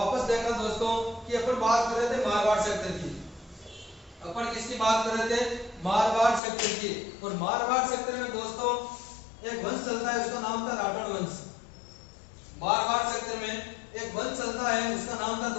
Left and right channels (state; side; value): drops out; right; at 6.4 s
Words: देखना दोस्तों कि अपन बात कर रहे थे मारवाड़ सेक्टर की। अपन किसकी बात कर रहे थे? मारवाड़ सेक्टर की। और मारवाड़ सेक्टर में दोस्तों एक वंश चलता है, उसका नाम था राठौड़ वंश। मारवाड़ सेक्टर में एक वंश चलता है, उसका नाम था